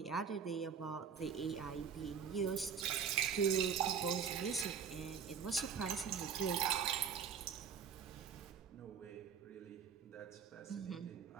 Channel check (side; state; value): left; quieter; 6.9 dB